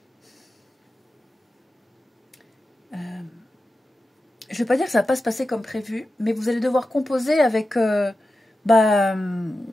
je ne vais pas dire que ça va pas se passer comme prévu, mais vous allez devoir composer avec une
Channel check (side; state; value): both; normal; correlation 0.92